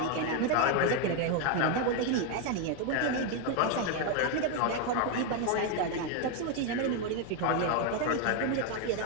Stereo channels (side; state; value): both; different; correlation 0.01